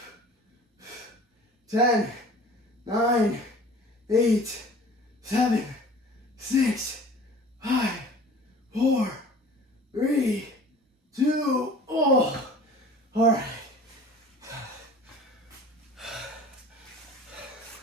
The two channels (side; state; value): both; normal; correlation 0.45